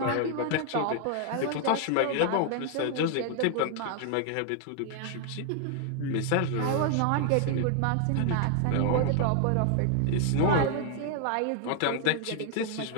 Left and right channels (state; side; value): different; both; correlation 0.00